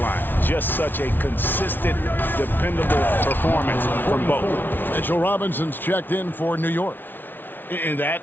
Just such a consistent, dependable performance from both. Mitchell Robinson's checked in for New York. And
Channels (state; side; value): late; right; 0.094 ms